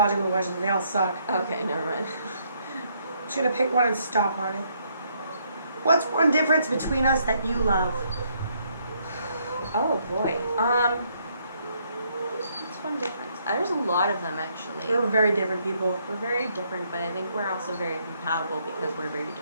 questions. They all suck. Okay, never mind. I'm just gonna pick one and stop on it. What's one difference between us that you love? Oh boy. What's one difference? There's a lot of them actually. We're very different people. We're very different, but I think we're also very compatible because we're very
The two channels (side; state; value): both; inverted; correlation -0.71